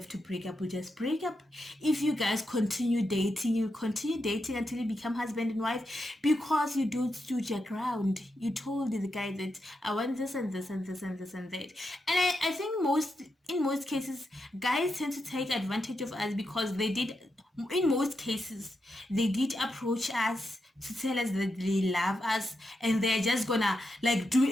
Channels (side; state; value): both; normal; correlation 0.85